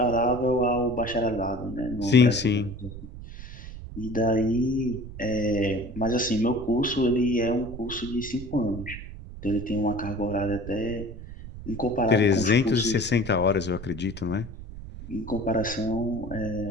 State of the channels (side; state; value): right; noise; rumble, 12 dB below the sound